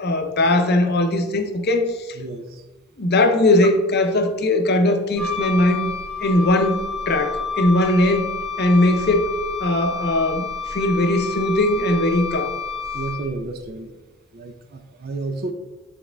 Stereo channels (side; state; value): both; normal; correlation 0.40